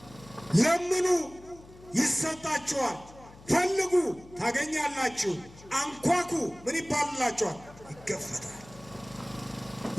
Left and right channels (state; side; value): noise; left; hum, 21 dB below the sound